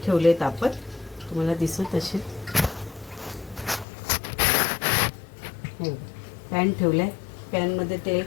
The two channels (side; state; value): right; drops out; at 3.9 s